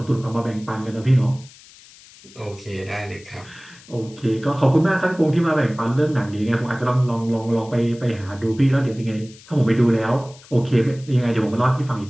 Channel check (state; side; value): noise; left; hiss, 23 dB below the sound